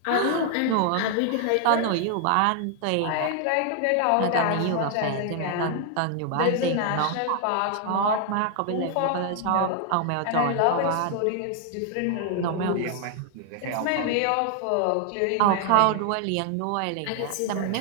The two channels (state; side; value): different; both; correlation 0.00